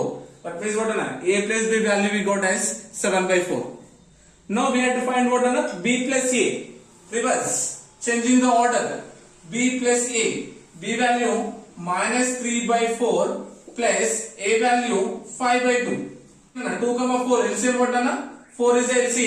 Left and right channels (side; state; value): both; identical; correlation 1.00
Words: That means what? A plus B value we got as 7 by 4. Now we have to find what another b plus a. Reverse, changing the order. B plus a. B value minus 3 by 4 plus a value 5 by 2. 2 comma 4 LCM what anna? 4 is the